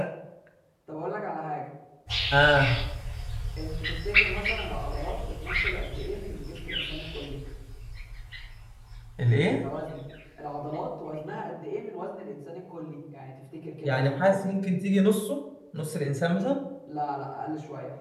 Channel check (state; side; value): identical; both; correlation 1.00